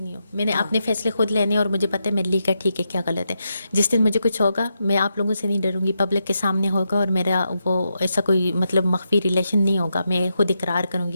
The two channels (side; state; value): both; inverted; correlation -0.84